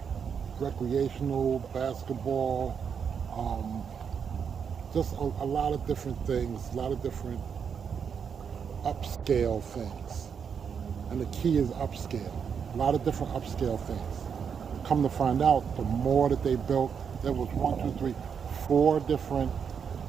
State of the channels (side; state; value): left; quieter; 6.9 dB